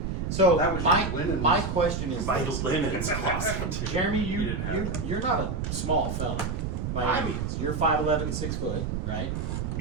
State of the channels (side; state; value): right; noise; rumble, 2 dB below the sound